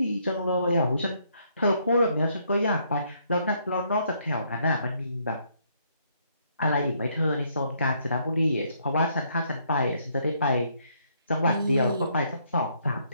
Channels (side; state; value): both; inverted; correlation -0.71